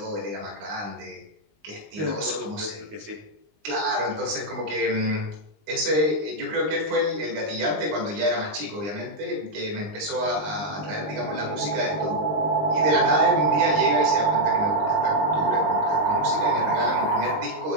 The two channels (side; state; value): left; late; 19 ms